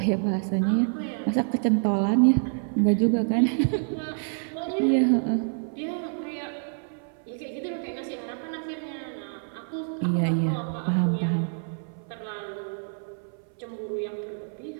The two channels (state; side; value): silent; left; 60 dB below the other